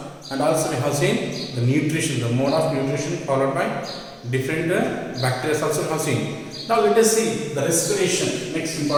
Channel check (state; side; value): identical; both; correlation 1.00